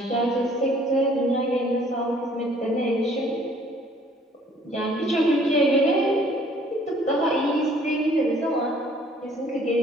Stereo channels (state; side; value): normal; both; correlation 0.58